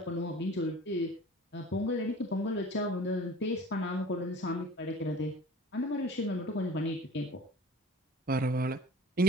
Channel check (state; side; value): normal; both; correlation 0.43